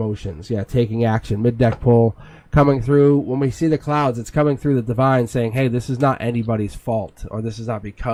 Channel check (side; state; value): both; identical; correlation 1.00